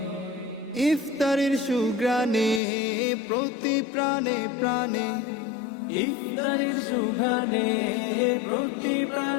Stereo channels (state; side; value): drops out; right; at 2.6 s